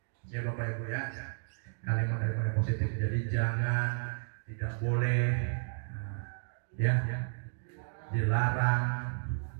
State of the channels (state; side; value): silent; left; digital silence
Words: Ya Bapak Ibu ya, kalimat-kalimat yang positif. Jadi jangan, tidak boleh, ya, dilarang